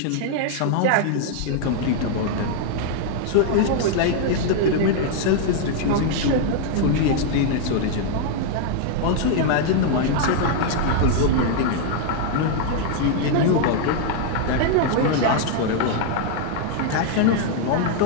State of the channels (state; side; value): different; both; correlation 0.00